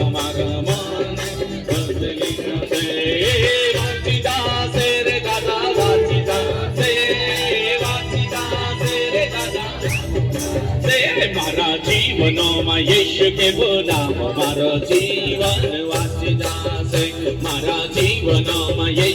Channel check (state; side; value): identical; both; correlation 1.00